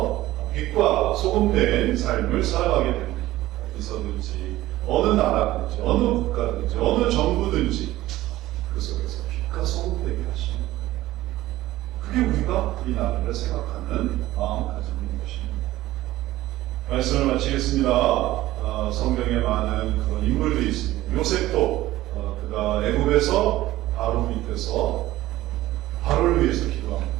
빛과 소금된 삶을 살아가게 됩니다. 어디서든지 어느 나라든지 어느 국가든지 어느 정부든지 그 속에서 빛과 소금되게 하시는 그게 우리가 이 나라를 생각하는 마음가짐인 것입니다. 말씀을 마치겠습니다. 성경에 많은 그런 인물들이 있습니다. 요셉도 그가 애굽에서 바로 밑에서 바로를 위해서 기도한 거죠.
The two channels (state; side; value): quieter; left; 16.1 dB